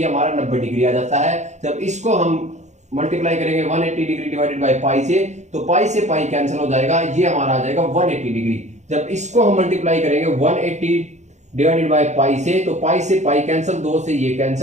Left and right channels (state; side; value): late; left; 0.34 ms